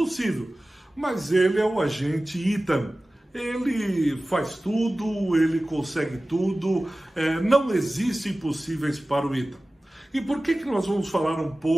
mas ele é o agente Ethan. Ele faz tudo, ele consegue tudo, não existe impossíveis para o Ethan. E por que nós vamos falar um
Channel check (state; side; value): normal; both; correlation 0.97